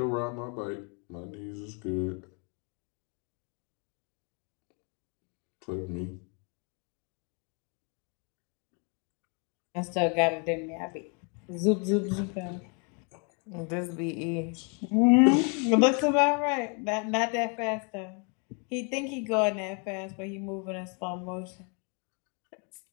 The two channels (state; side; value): quieter; right; 36.8 dB